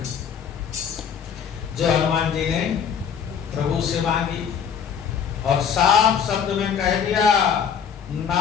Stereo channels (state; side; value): quieter; right; 7.6 dB